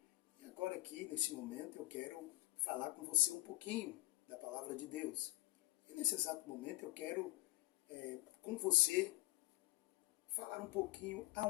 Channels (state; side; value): quieter; right; 18.8 dB